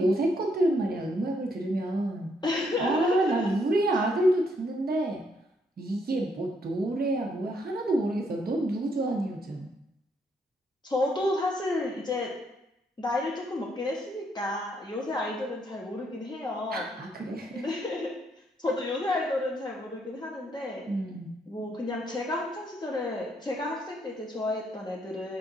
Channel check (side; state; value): both; normal; correlation 0.73